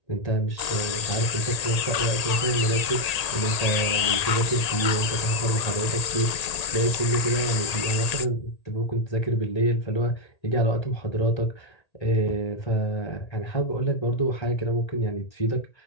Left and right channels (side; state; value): right; late; 1.8 ms